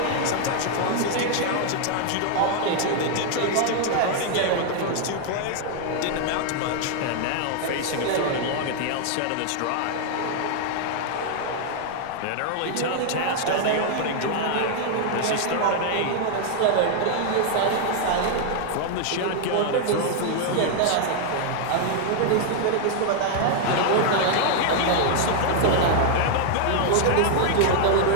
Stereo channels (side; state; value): both; different; correlation 0.00